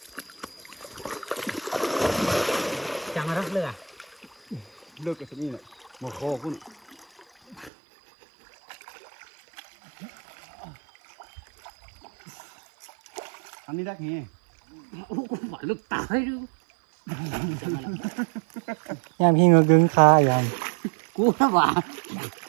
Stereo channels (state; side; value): drops out; left; at 7.7 s